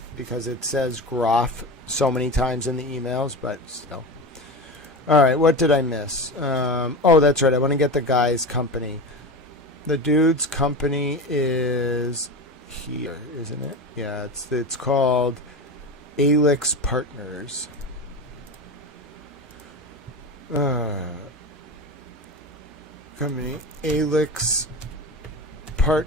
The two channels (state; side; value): normal; both; correlation 0.25